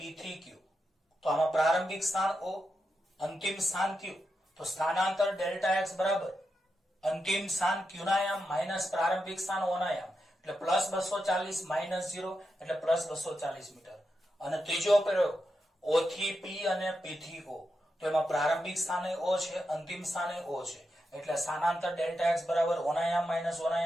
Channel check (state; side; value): normal; both; correlation 0.87